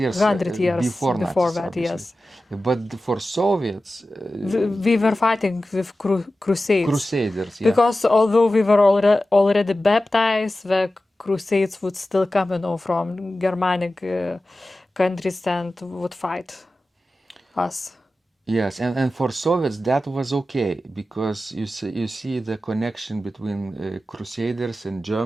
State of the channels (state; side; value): normal; both; correlation 0.94